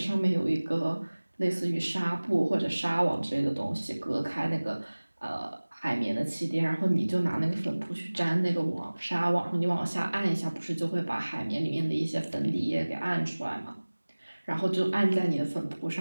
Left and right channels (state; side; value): inverted; both; correlation -1.00